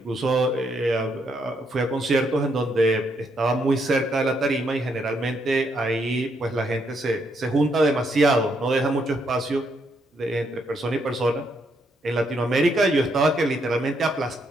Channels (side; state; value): both; normal; correlation 0.75